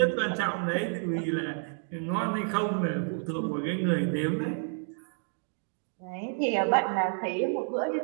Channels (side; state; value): left; silent; 58 dB below the other